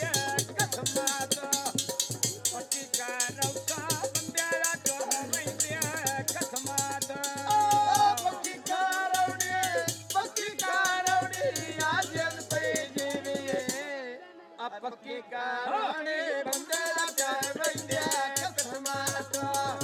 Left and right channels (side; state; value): both; identical; correlation 1.00